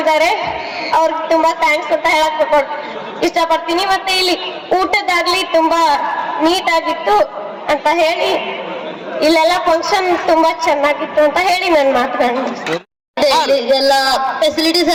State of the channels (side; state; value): both; identical; correlation 1.00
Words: ಅವ್ರಿಗೆ ತುಂಬಾ ಥ್ಯಾಂಕ್ಸ್ ಅಂತ ಹೇಳಕ್ ಇಷ್ಟಪಡ್ತೀನಿ. ಮತ್ತೆ ಇಲ್ಲಿ ಊಟದಾಗ್ಲಿ ತುಂಬಾ ನೀಟ್ ಆಗಿತ್ತು ಅಂತ ಹೇಳಿ ಇಲ್ಲೆಲ್ಲ ಫಂಕ್ಷನ್ ತುಂಬಾ ಚೆನ್ನಾಗಿತ್ತು ಅಂತ ಹೇಳಿ ನನ್ನ ಮಾತುಗಳನ್ನ ಎಲ್ಲ ಫೆಸಿಲಿಟೀಸ್